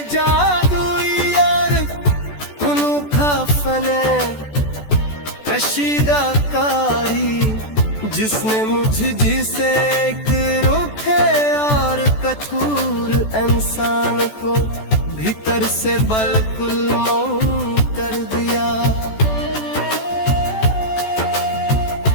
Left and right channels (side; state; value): right; late; 14 ms